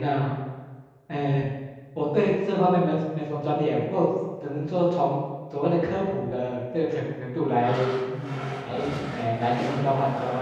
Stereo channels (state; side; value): identical; both; correlation 1.00